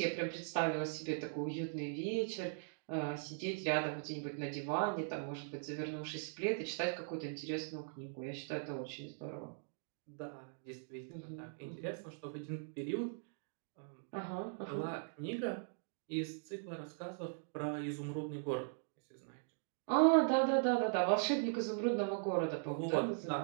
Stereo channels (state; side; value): silent; left; digital silence